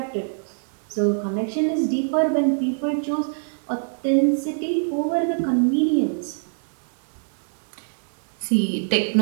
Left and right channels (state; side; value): silent; left; digital silence